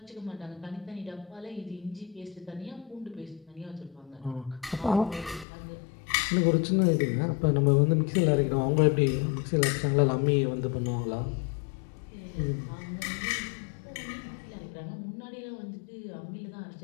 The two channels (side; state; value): right; drops out; at 5.5 s